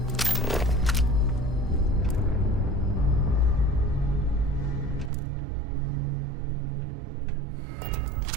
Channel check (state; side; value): drops out; left; at 5.1 s